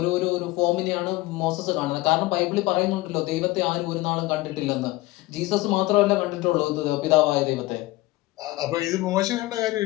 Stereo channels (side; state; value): right; quieter; 19.4 dB